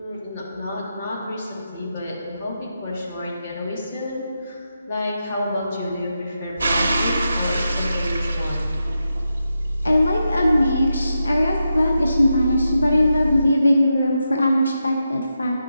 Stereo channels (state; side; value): inverted; both; correlation -0.87